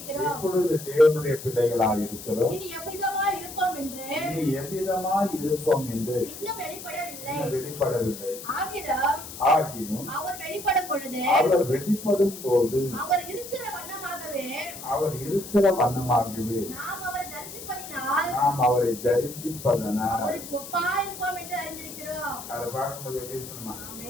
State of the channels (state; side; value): noise; left; hiss, 12 dB below the sound